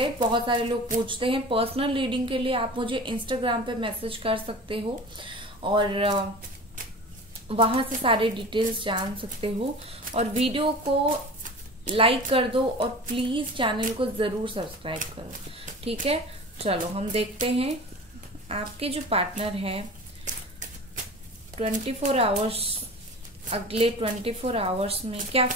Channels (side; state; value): both; normal; correlation 0.36